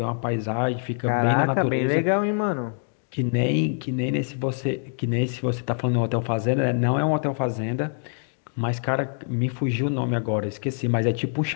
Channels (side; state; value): right; silent; 57 dB below the other